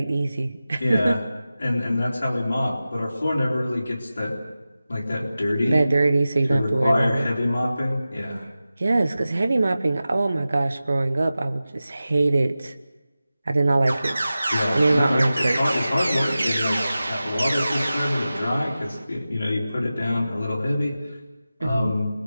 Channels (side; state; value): both; inverted; correlation -0.95